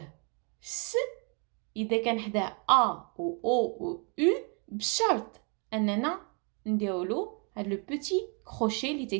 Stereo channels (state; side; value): quieter; left; 36.0 dB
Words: س إذا كان حداه A ou O ou U بشرط أننا نديرولو هاد لو بوتي كروشي اللي